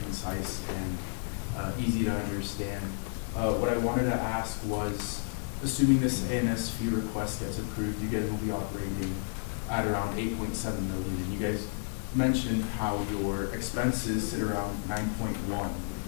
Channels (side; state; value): right; silent; digital silence